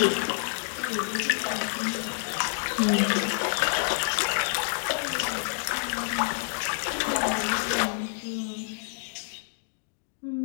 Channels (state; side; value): silent; right; digital silence